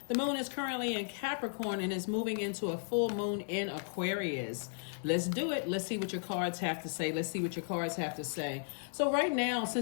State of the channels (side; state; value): right; silent; digital silence